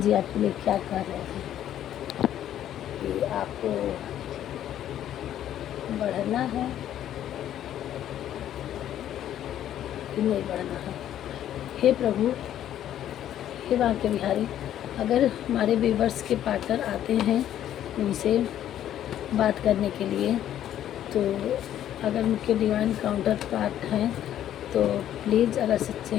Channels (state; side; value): quieter; right; 11.3 dB